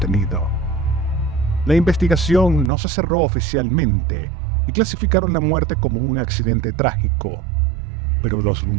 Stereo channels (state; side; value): drops out; left; at 2.7 s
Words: La investigación no se cerró oficialmente y clasificaron la muerte como un accidente trágico, pero los